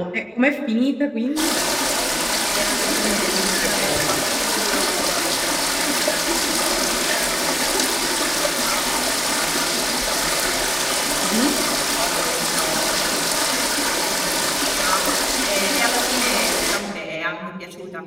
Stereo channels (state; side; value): identical; both; correlation 1.00